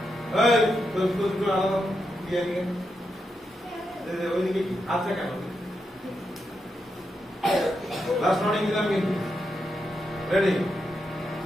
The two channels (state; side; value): normal; both; correlation 0.84